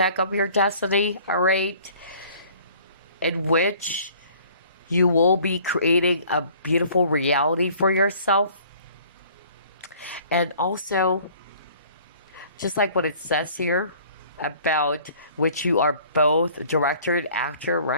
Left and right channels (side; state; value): both; inverted; correlation -0.53